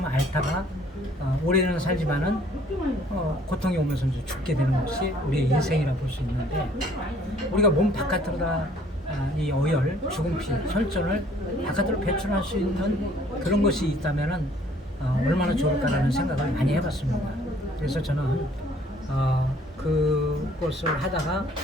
앓다가 올해는 살지만은 고통이 오면서 이제 죽게 되는 것이 우리의 인생이라 볼 수 있는데 우리가 몸 바깥으로다 이 어혈, 죽은 피, 혈전을 바깥으로 배출할 수 있는 그런 것이 있다면은 얼마나 좋을까라는 생각을 많이 해봤습니다. 그래서 저는 그것을 하다가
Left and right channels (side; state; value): both; normal; correlation 0.58